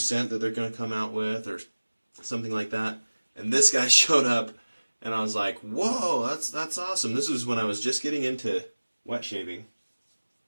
that they're going to come out with or something like that. And this guy showed up and I was like, whoa, that's awesome. This was when I was just getting into wet shaving,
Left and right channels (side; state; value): both; inverted; correlation -1.00